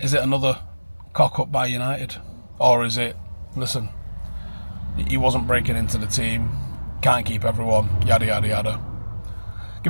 it another cock-up by United? Or is it, listen, he wasn't breaking into the team, can't keep everyone, yada, yada, yada.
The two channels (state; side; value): inverted; both; correlation -1.00